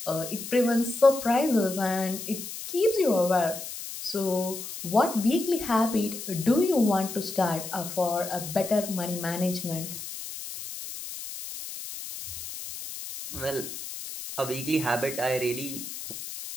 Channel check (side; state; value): left; noise; hiss, 9 dB below the sound